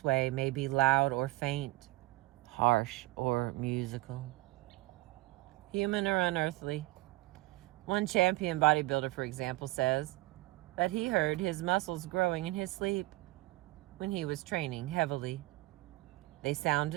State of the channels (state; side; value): quieter; left; 20.2 dB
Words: way may be loud or faint, harsh or musical, human or unearthly. One champion bodybuilder, for example, says that he heard his muscles growing in his sleep when he was training heavily. They